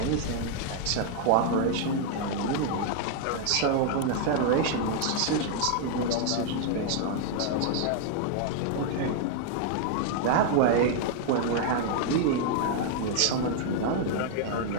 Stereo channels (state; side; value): different; both; correlation 0.00